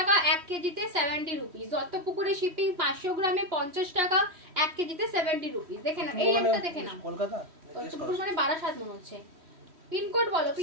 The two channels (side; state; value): left; late; 3.1 ms